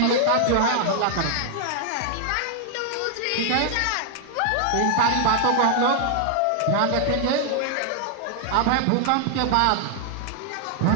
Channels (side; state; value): both; different; correlation 0.00